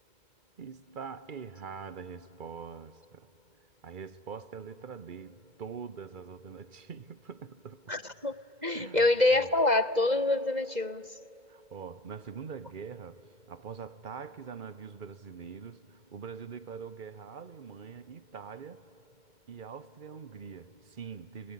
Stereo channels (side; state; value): left; late; 2.0 ms